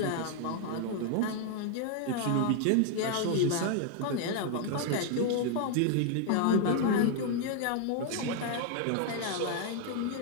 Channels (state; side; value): different; both; correlation 0.00